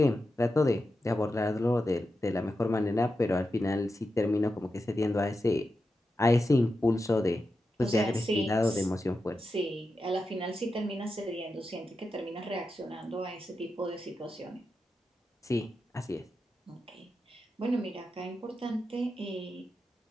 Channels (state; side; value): normal; both; correlation 0.89